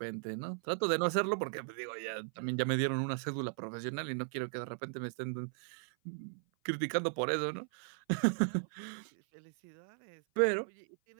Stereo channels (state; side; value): silent; left; 53 dB below the other